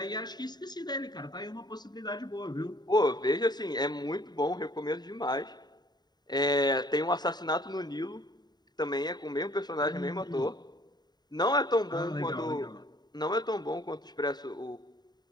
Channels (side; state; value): right; late; 0.20 ms